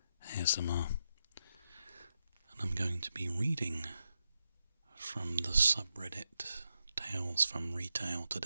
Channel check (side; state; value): both; inverted; correlation -0.86